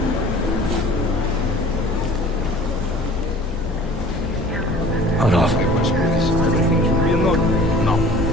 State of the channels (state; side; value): normal; both; correlation 0.46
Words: Hold off. Everything should be in order. No,